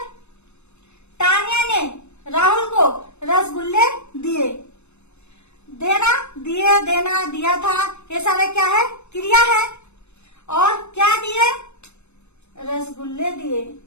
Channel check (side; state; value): right; late; 0.82 ms